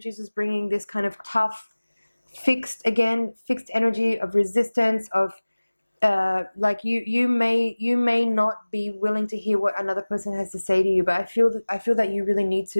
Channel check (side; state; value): both; inverted; correlation -1.00